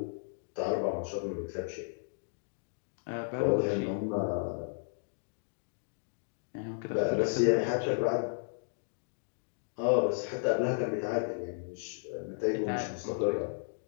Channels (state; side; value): silent; right; digital silence